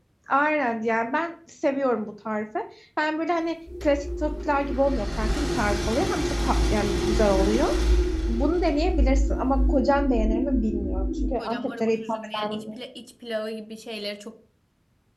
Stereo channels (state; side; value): identical; both; correlation 1.00